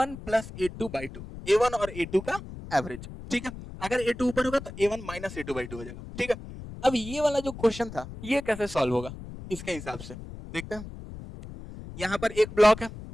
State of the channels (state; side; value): noise; left; rumble, 13 dB below the sound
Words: plus A2 by 2, A1 और A2 का एवरेज, ठीक है। अगर A2 ऊपर होगा तो A1 माइनस A2 बाई 2 हो जाएगा, ठीक है। अब ये वाला जो क्वेश्चन था ये कैसे सॉल्व होगा, इसके हिसाब से देखते हैं। यहां पर एक ब्लॉक है,